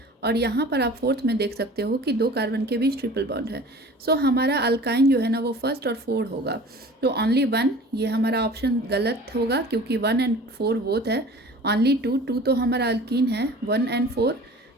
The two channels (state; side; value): normal; both; correlation 0.43